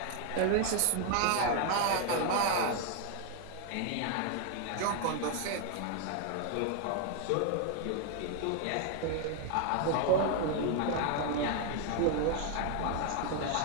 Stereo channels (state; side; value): different; both; correlation 0.00